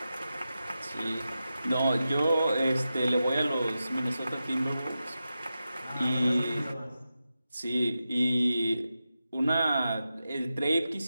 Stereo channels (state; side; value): inverted; both; correlation -0.91